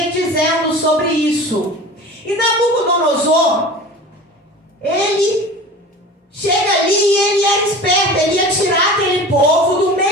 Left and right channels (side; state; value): both; normal; correlation 0.37